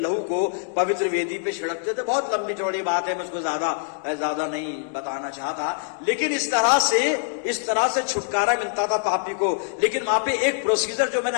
को पवित्र वेदी पे छिड़कते थे। बहुत लंबी चौड़ी बात है, मैं उसको ज्यादा नहीं बताना चाहता, लेकिन इस तरह से छुटकारा मिलता था पापी को। लेकिन वहां पे एक प्रोसीजर जो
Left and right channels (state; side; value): silent; right; digital silence